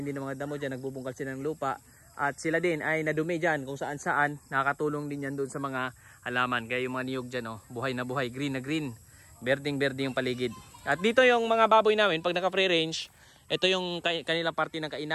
din ng mga damo dyan, nagbubungkal sila ng lupa. At sila din ay nadumi dyan kung saan saan. Nakakatulong din yan doon sa mga halaman. Kaya yung mga niyog dyan, buhay na buhay, green na green. Berding-berde yung paligid. At dito yung mga baboy namin, pag naka-free range, ito yung kanilang parte ng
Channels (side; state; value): both; identical; correlation 1.00